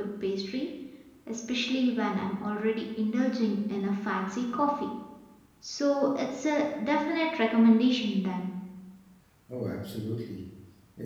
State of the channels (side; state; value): both; identical; correlation 1.00